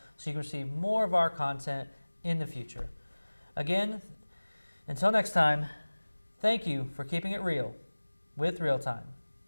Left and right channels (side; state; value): both; inverted; correlation -1.00